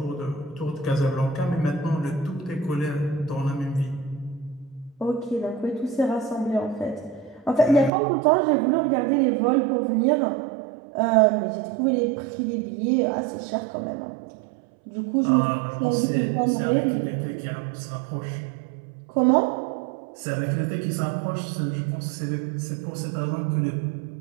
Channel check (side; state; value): left; drops out; at 7.9 s